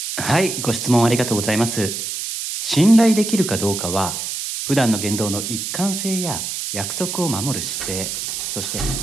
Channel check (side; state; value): right; noise; hiss, 4 dB below the sound